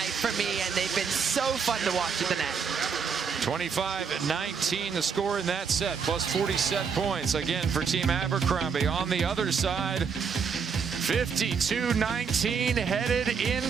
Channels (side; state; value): left; quieter; 6.1 dB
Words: for me, and they've been so fun to watch at the net. 25-19 the score in that set, plus 40 set points again for Team Abercrombie. On the other side, 52-19 headed